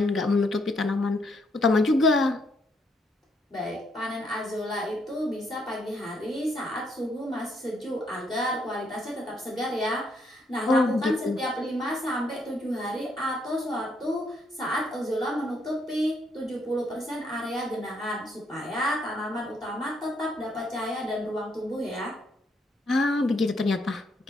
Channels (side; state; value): both; normal; correlation 0.73